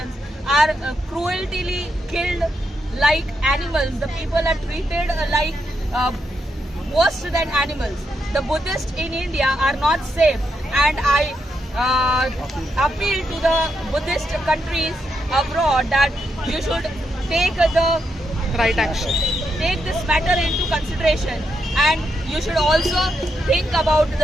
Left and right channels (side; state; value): both; normal; correlation 0.82